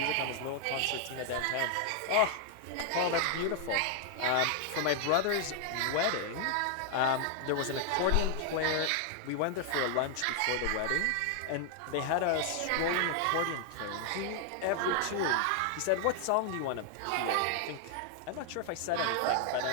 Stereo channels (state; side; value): different; both; correlation 0.00